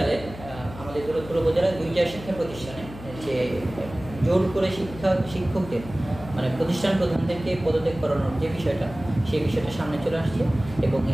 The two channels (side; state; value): left; noise; hum, 14 dB below the sound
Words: আমাদের দৌলতপুর উপজেলার ২টা শিক্ষা প্রতিষ্ঠানে যে জোর করে শিক্ষকদের মানে প্রতিষ্ঠান প্রধানদেরকে পদত্যাগ করানোর যে বিষয়টা, সেই বিষয়টা সামনে চলে আসছে এবং